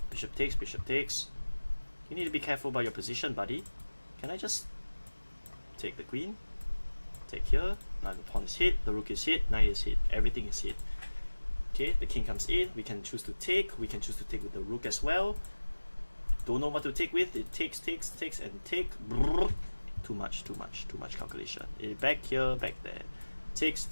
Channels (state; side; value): inverted; both; correlation -1.00